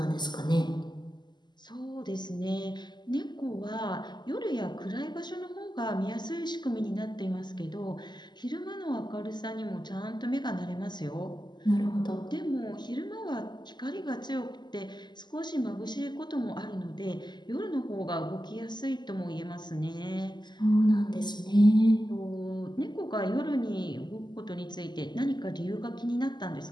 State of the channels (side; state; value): right; late; 0.21 ms